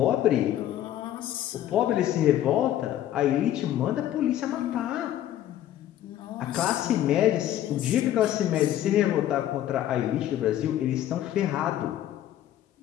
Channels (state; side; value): quieter; right; 12.2 dB